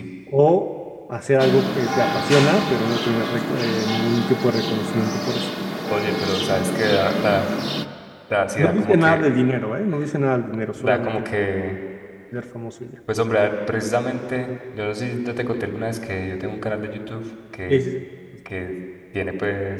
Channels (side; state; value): both; identical; correlation 1.00